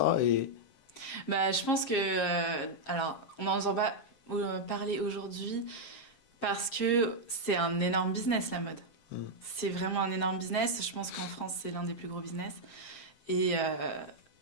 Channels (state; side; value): late; right; 7.5 ms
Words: Je pense que... alors, on n'en entend pas parler aujourd'hui parce que c'est un énorme business, la mode. C'est vraiment un énorme business. Je pense qu'en France, c'est l'un des plus gros business. Et